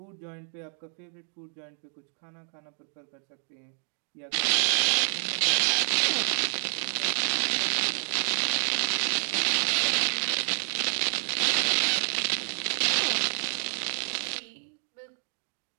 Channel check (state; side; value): silent; left; digital silence